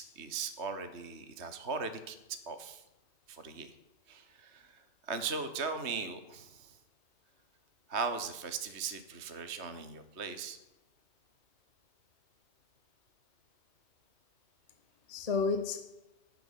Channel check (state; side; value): late; left; 3.1 ms